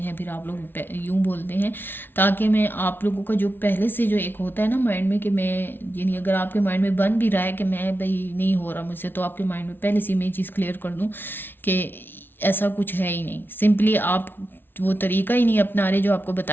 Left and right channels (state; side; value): late; right; 0.10 ms